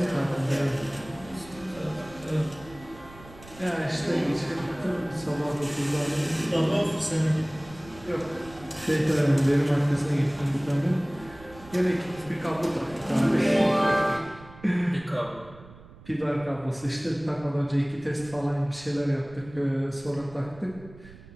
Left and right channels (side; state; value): right; noise; rumble, 20 dB below the sound